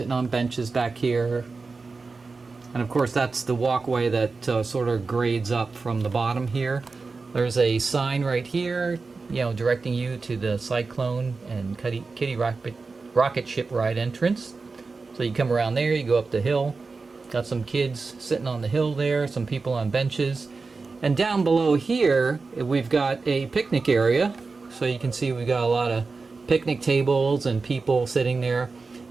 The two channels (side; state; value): left; quieter; 4.2 dB